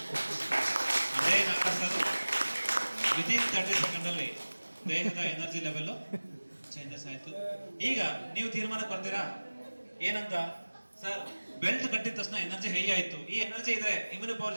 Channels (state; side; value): inverted; both; correlation -1.00